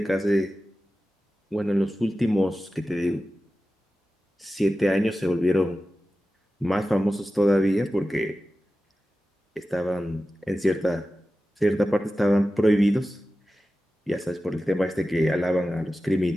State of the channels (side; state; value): both; normal; correlation 0.94